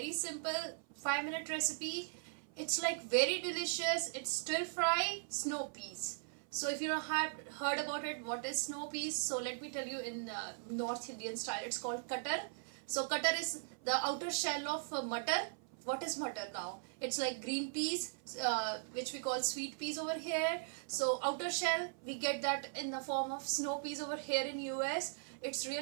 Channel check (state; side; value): silent; left; 52 dB below the other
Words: simple 5-minute recipe. It's like very delicious. It's stir fry snow peas. So if you don't have heard about it, what is snow peas? So let me tell you in North Indian style. It's called cutter. So cutter is the outer shell of mutter. What is mutter now? It's like green peas, which we call sweet peas over here. So outer shell, we get that in the form of snow peas over here in US. It's